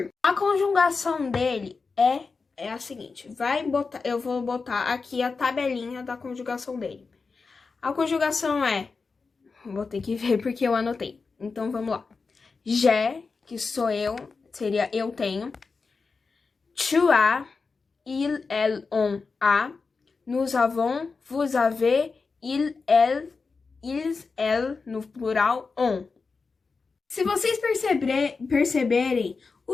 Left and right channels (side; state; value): right; quieter; 4.5 dB